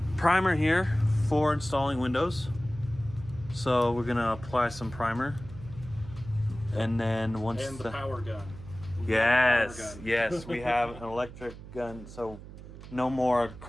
primer here for installing windows. So we're gonna apply some primer, and then once And the power gun. yes, we have an electric gun, so no more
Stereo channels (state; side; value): noise; right; hum, 15 dB below the sound